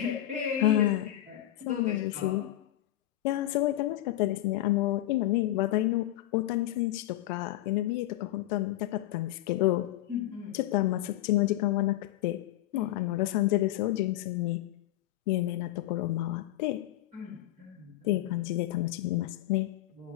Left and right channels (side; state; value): right; quieter; 14.6 dB